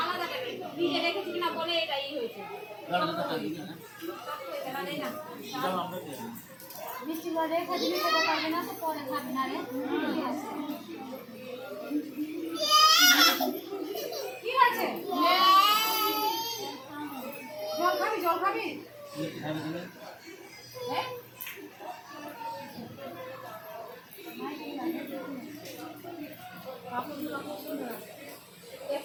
জল খাবি, জল খাবি?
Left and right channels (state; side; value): identical; both; correlation 1.00